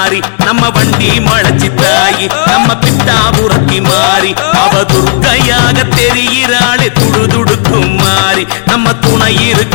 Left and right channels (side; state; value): right; silent; 71 dB below the other